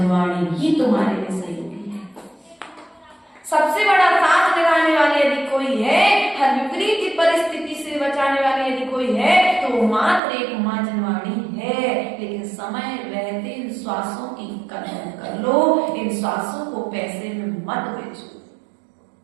ही तुम्हारे लिए सहयोगी है। सबसे बड़ा साथ लगाने वाले यदि कोई है, हर विपरीत परिस्थिति से बचाने वाले यदि कोई है, तो मात्र एक मां जिनवाणी है। लेकिन समय रहते इन श्वासों की कदर कर लो, इन श्वासों को पैसे में मत बेचो।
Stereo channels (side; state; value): left; drops out; at 10.2 s